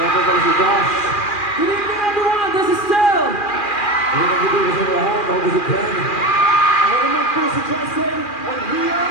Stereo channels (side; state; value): right; late; 2.4 ms